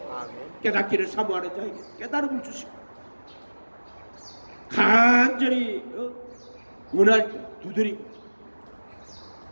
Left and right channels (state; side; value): inverted; both; correlation -1.00